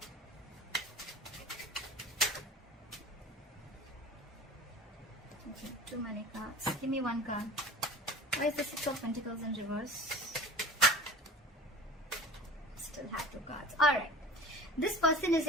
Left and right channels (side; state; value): both; normal; correlation 0.39